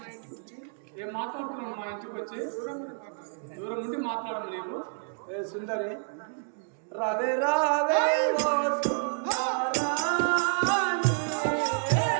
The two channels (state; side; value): silent; left; digital silence